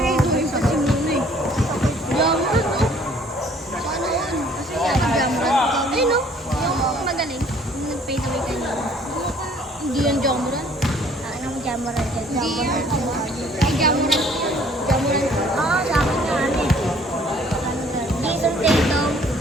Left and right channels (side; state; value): both; normal; correlation 0.57